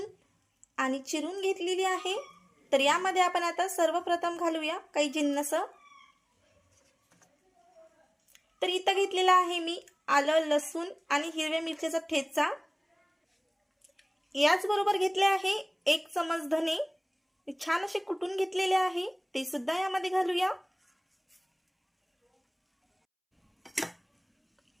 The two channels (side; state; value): both; identical; correlation 1.00